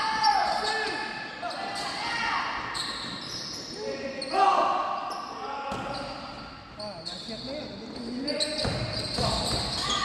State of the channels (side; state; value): both; identical; correlation 1.00